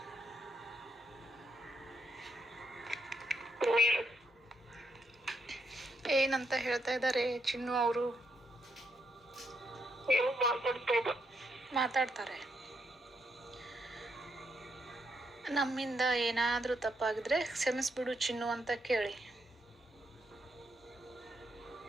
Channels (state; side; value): normal; both; correlation 0.78